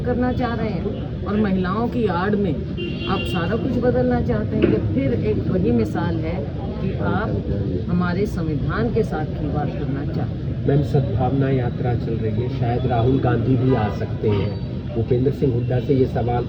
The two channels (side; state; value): both; identical; correlation 1.00